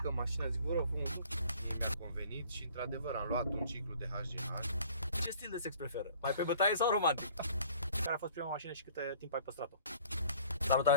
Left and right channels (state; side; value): inverted; both; correlation -0.52